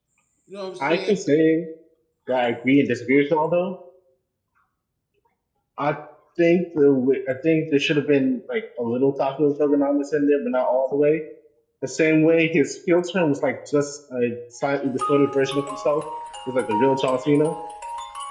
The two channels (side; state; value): both; identical; correlation 1.00